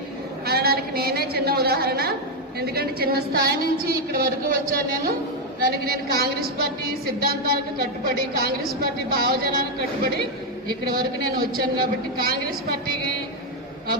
అనడానికి నేనే చిన్న ఉదాహరణ. ఎందుకంటే చిన్న స్థాయి నుంచి ఇక్కడి వరకు వచ్చాను నేను. దానికి నేను కాంగ్రెస్ పార్టీ సిద్ధాంతాలకు కట్టుబడి కాంగ్రెస్ పార్టీ భావజనాలకు కట్టుబడి ఇక్కడి వరకు నేను వచ్చాను. కాబట్టి కాంగ్రెస్ పార్టీకి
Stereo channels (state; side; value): normal; both; correlation 0.03